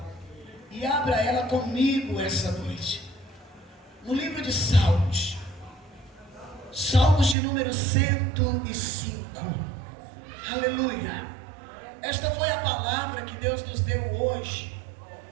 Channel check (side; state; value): left; drops out; at 7.4 s